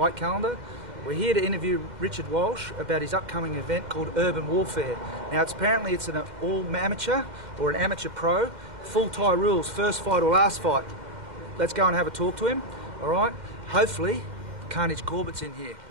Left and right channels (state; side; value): late; left; 2.1 ms